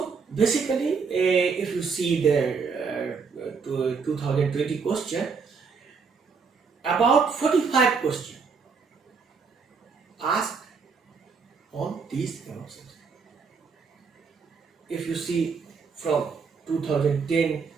basically, if you see the 2020 question, about 45 questions asked on these subjects. If you see from 2010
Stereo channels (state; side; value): quieter; left; 5.3 dB